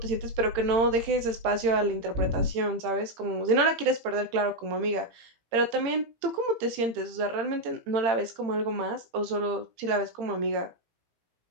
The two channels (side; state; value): left; late; 18 ms